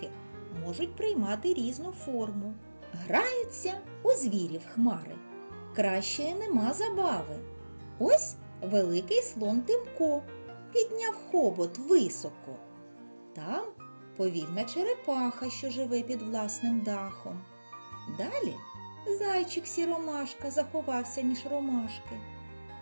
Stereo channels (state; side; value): inverted; both; correlation -1.00